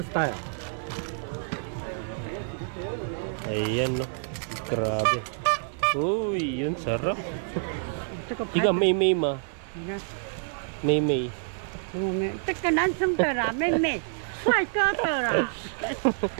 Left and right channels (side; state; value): left; silent; digital silence